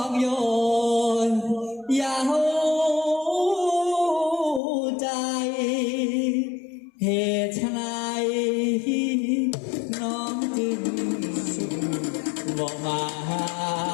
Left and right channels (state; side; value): drops out; right; at 4.6 s